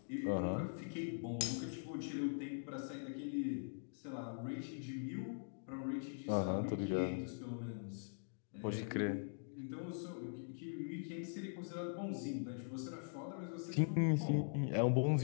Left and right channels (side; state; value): right; silent; digital silence